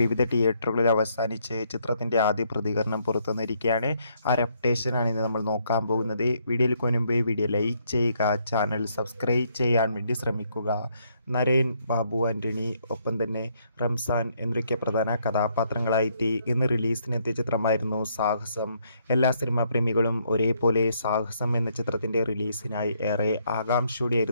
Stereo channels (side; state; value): both; inverted; correlation -0.72